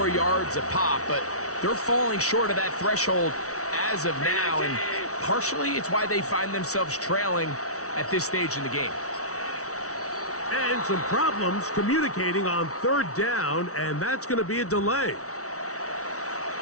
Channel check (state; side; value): late; right; 0.65 ms